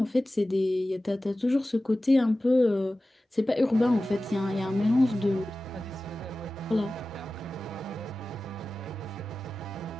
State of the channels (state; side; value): normal; both; correlation 0.95